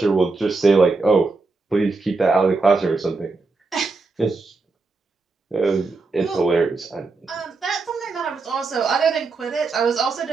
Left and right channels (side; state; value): left; quieter; 3.9 dB